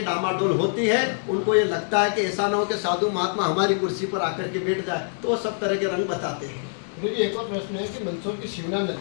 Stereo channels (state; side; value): silent; right; digital silence